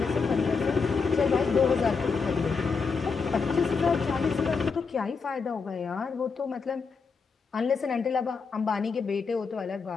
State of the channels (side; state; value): right; quieter; 5.1 dB